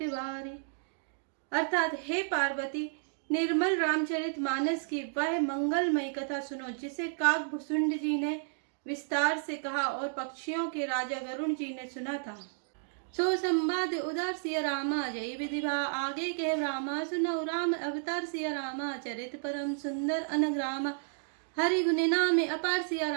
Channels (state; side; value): silent; left; digital silence